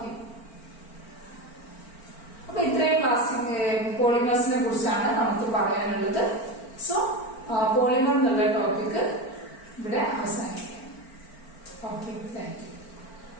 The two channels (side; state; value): right; late; 4.4 ms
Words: അപ്പൊ ഇത്രയും പ്ലാസ്റ്റിക് പോളിമേഴ്സിനെ കുറിച്ചാണ് നമുക്ക് പറയാനുള്ളത്. സോ പോളിമർ എന്നുള്ള ടോപ്പിക് ഇവിടെ അവസാനിക്കാം. Okay, thank you.